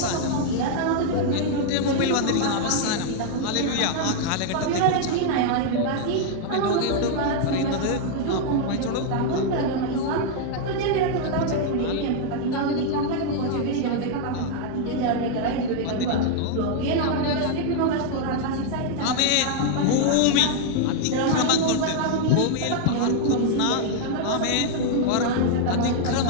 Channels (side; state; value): both; different; correlation 0.00